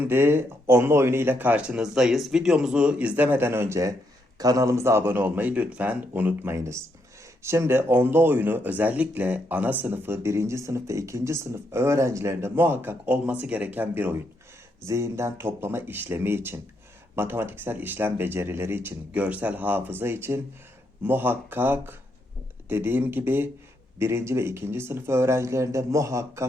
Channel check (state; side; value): normal; both; correlation 0.78